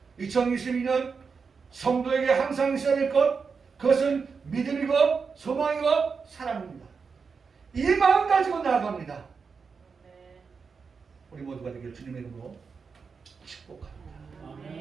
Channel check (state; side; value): quieter; left; 5.4 dB